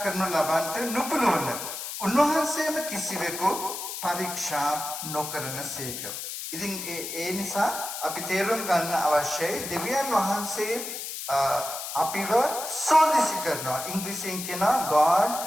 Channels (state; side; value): noise; left; hiss, 7 dB below the sound